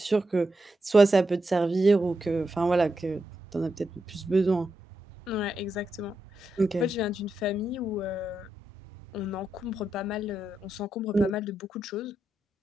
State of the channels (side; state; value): both; normal; correlation 0.85